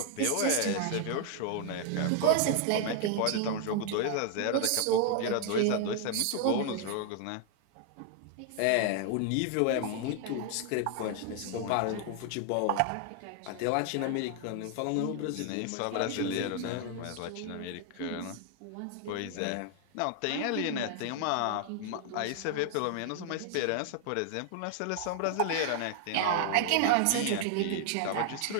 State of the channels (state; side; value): different; both; correlation 0.00